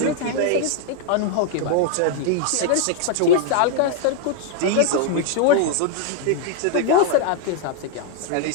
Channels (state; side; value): different; both; correlation 0.00